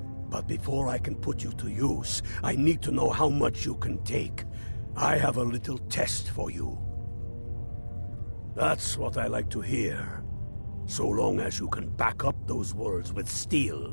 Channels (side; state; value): both; inverted; correlation -1.00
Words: But before I can put you to use, I need to know how much you can take. I have a little test for you. That's what I like to hear. So long as you can back up those words with